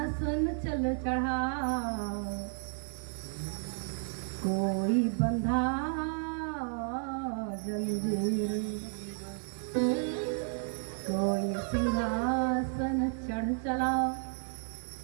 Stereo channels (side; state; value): left; silent; 56 dB below the other